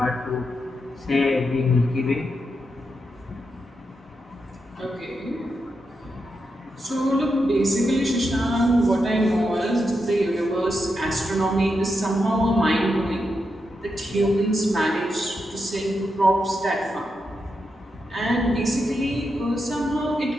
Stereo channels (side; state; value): both; normal; correlation 0.85